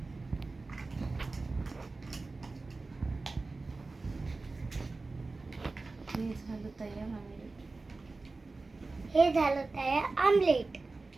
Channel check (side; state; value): left; quieter; 3.6 dB